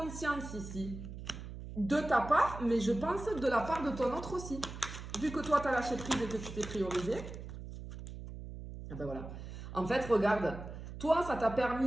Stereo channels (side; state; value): right; noise; hum, 10 dB below the sound